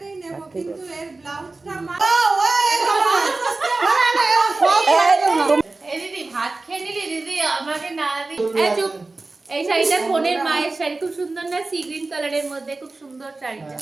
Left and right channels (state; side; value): quieter; left; 3.4 dB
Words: দিদি ভাত খেয়ে নিলি দিদি, আমাকে না দিদি। চুপ। এই শাড়িটা কোনের মায়ের শাড়ি, খুব সুন্দর না? সি গ্রিন কালারের মধ্যে খুব সুন্দর শাড়িটা।